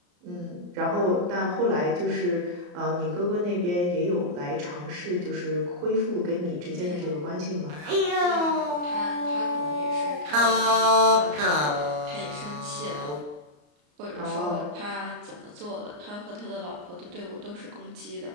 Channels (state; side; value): late; left; 34 ms